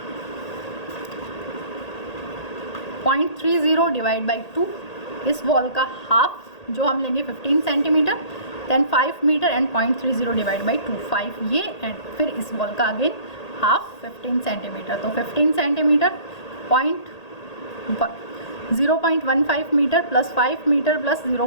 0.30 डिवाइड बाई 2। इस वॉल का हाफ जो हम लेंगे 15 centimetre, then 5 metre and 0.30 divide by 2, 5 ये, एंड फिर इस वॉल का अगेन हाफ 15 सेंटीमीटर। तो 15 centimetre 0.15 metre plus 5 metre plus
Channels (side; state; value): right; late; 1.8 ms